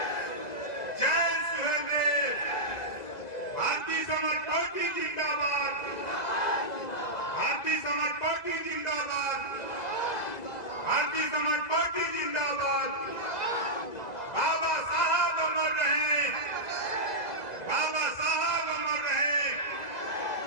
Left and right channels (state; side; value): late; right; 2.0 ms